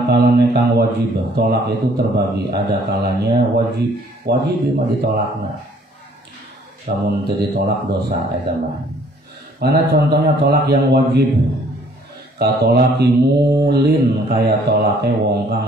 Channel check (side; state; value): both; normal; correlation 0.59